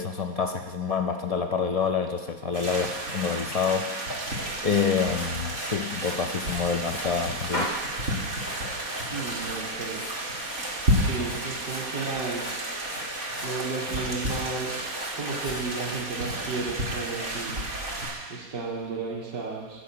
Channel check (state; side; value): late; left; 4.2 ms